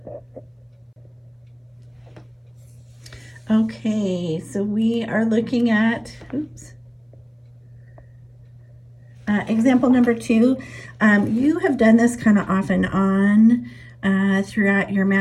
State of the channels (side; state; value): both; identical; correlation 1.00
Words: Okay, so we are looking at, example number 2. You have done this kind of off and on throughout your